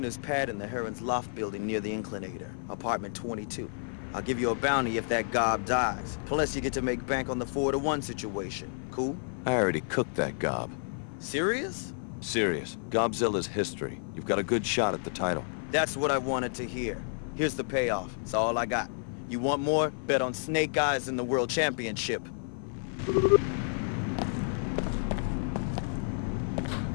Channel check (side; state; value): right; silent; 57 dB below the other